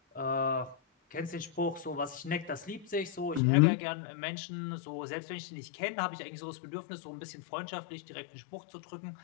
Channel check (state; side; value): drops out; right; at 3.4 s